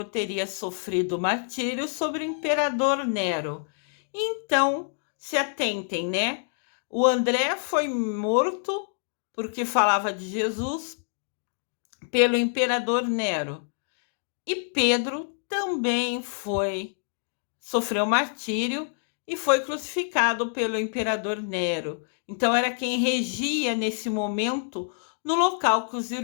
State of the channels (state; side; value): silent; right; digital silence